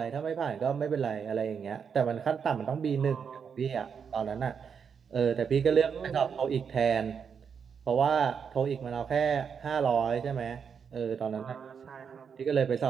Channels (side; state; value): left; quieter; 6.7 dB